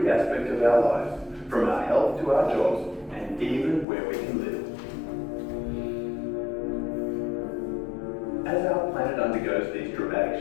aspect of our lives, from our health to our jobs, and even where we can live. As our planet undergoes these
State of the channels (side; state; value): right; drops out; at 3.9 s